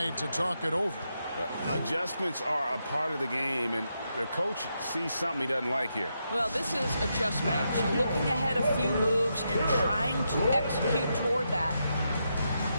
to talk it over. Adjustments are a part of the game, and the coach sees something he doesn't like here. Well, this is a chess match. Looking ahead a few moves and trying to execute toward that.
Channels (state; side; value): inverted; both; correlation -0.83